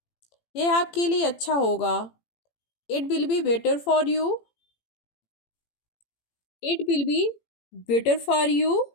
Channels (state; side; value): late; right; 18 ms